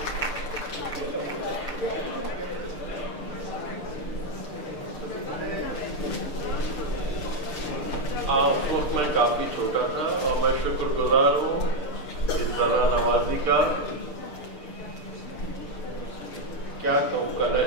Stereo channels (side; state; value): right; late; 6.7 ms